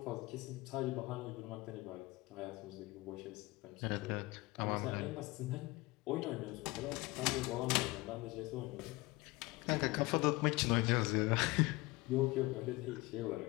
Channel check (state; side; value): quieter; right; 22.0 dB